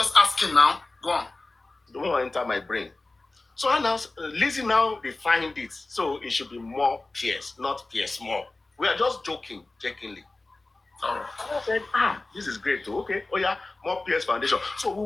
Go on. Don't want to enter my brain. So Lizzie now defined it. So it should be more Pierce, not Pierce Moore. We are just joking, jokingly. I said, this is great too. Okay, oh yeah, more Pierce Foundation. So we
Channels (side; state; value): right; quieter; 3.1 dB